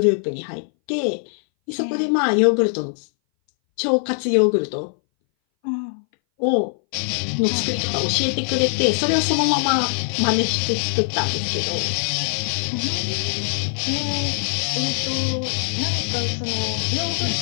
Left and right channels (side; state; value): right; silent; 61 dB below the other